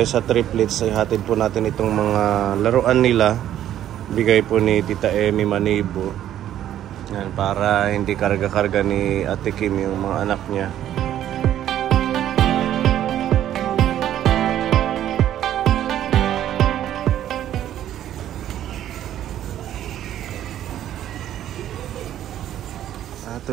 sa triplets. Ay hatid po natin itong mga laruan nila. Bigay po ni Tita Emmy Manibo. Yan, para hindi karga-karga ni Ate Kim yung mga anak niya.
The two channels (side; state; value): left; quieter; 11.6 dB